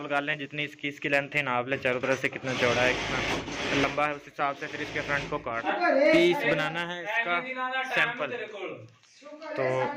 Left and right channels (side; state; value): both; identical; correlation 1.00